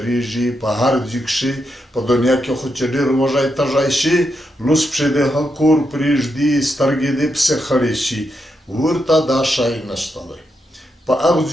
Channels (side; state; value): both; normal; correlation 0.84